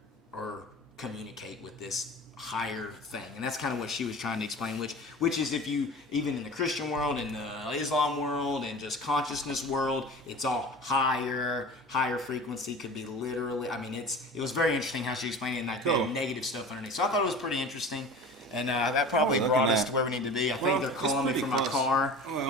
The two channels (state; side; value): normal; both; correlation 0.38